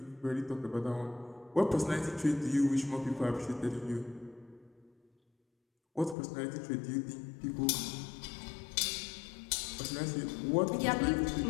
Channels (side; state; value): right; drops out; at 6.2 s